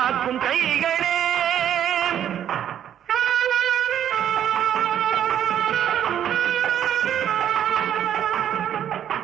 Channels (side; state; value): left; quieter; 10.1 dB